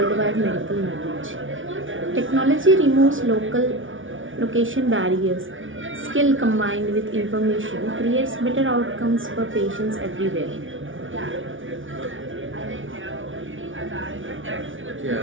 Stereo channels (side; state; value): left; late; 0.57 ms